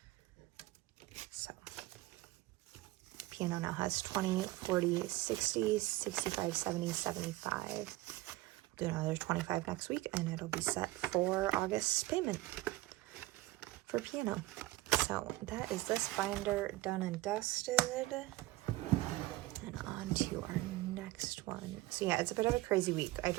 So piano now has 20, 40, 60, 65, 70, 75. Do another 25 next week, and it'll be set for August's payment for piano. So that is this binder done and dusted. And on to our next one. So yeah, it's a bit of a crazy week. I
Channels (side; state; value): left; quieter; 18.3 dB